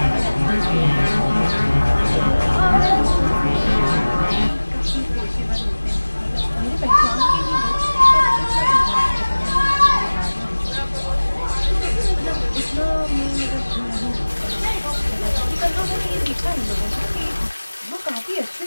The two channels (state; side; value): inverted; both; correlation -1.00